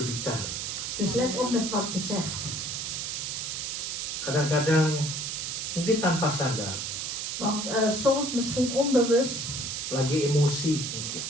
Dus let op met wat je zegt. Kadang-kadang mungkin tanpa sadar, Want soms misschien onbewust, lagi emosi mungkin.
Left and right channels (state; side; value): noise; right; hiss, 3 dB below the sound